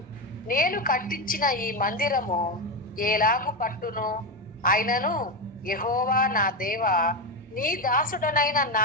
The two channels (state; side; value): normal; both; correlation 0.13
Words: నేను కట్టించిన ఈ మందిరము ఏలాగు పట్టును? అయినను యెహోవా నా దేవా, నీ దాసుడనైన నా